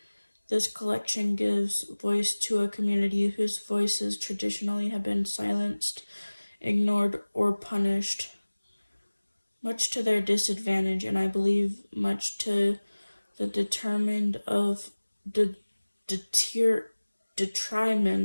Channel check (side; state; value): both; inverted; correlation -1.00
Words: this collection gives voice to a community whose voices traditionally have been silenced, ignored, or punished, much to their disadvantage, and I believe much to the detriment of the